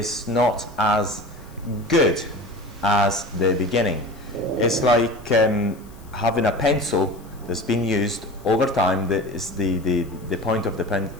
not as good as the beginning. It's like having a pencil that's been used over time. The point of the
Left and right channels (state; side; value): noise; left; hiss, 27 dB below the sound